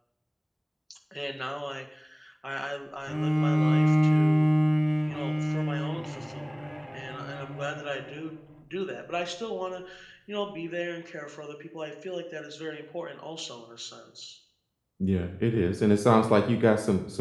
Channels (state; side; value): identical; both; correlation 1.00